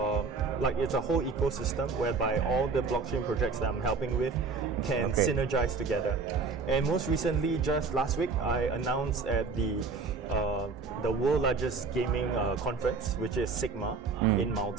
a whole ecosystem whereby all the blockchain projects that I'm helping with can synergize together. And most recently, just last week, I announced at the world largest gaming conference, which is Sigma in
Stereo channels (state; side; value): quieter; left; 4.6 dB